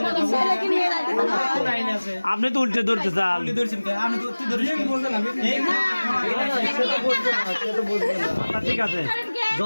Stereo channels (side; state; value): both; inverted; correlation -1.00